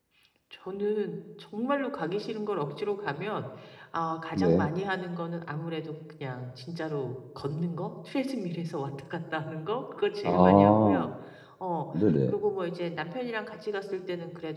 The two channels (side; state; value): both; identical; correlation 1.00